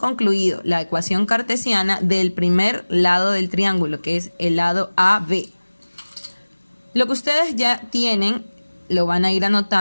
la ecuación cartesiana del primer lado del triángulo, que es el lado AB. Lo que ustedes ya tienen lo van a ir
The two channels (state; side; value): inverted; both; correlation -1.00